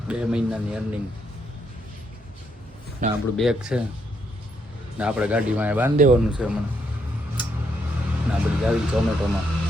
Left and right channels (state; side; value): normal; both; correlation 0.75